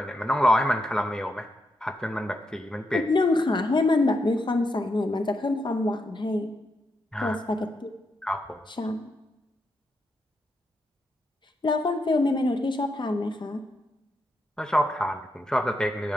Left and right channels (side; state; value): both; normal; correlation 0.82